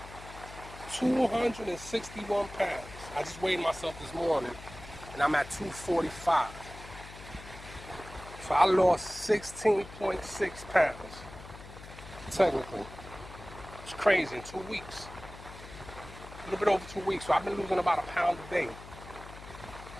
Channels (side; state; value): left; noise; hum, 15 dB below the sound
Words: 261 pounds. I just weighed myself this morning, and I'm at 245. So I lost 16.6 pounds, technically. It's crazy, in 2 weeks. A little bit over 2 weeks, so I've been losing about a pound a day.